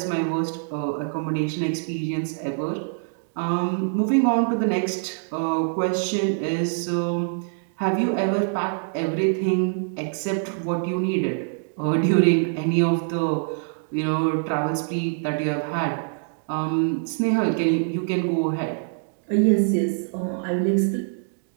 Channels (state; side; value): silent; left; digital silence